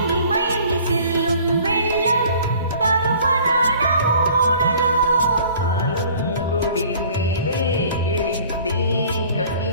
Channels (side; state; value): both; inverted; correlation -0.50